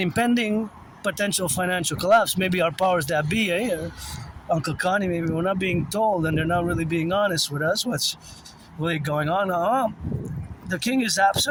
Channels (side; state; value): both; identical; correlation 1.00